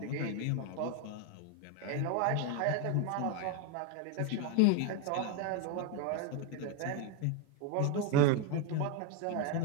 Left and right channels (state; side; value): different; both; correlation 0.02